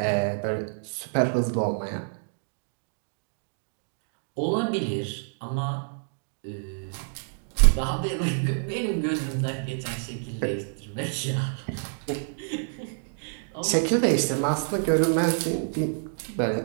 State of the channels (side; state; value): left; silent; digital silence